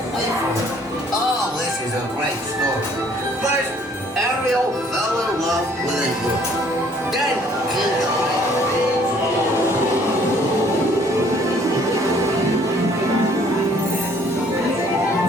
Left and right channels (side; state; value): both; normal; correlation 0.60